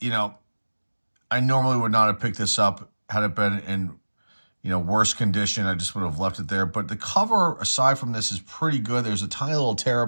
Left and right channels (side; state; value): both; inverted; correlation -1.00